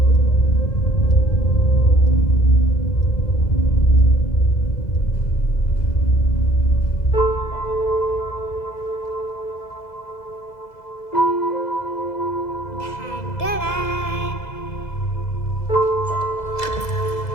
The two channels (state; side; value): late; right; 2.0 ms